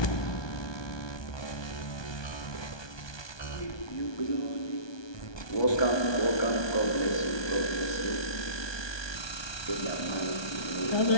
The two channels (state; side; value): late; right; 1.2 ms